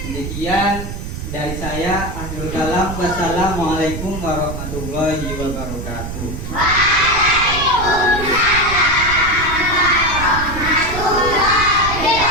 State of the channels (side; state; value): right; noise; rumble, 7 dB below the sound